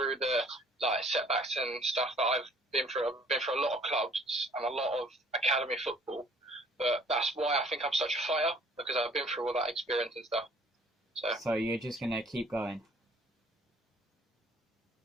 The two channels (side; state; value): both; normal; correlation 0.56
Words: the setbacks and stuff that I've been through. I've been through a lot of clubs and a lot of academy football, but that's why I think I'm such a fighter, because I've been through all that experience and stuff. So you're just gonna keep going?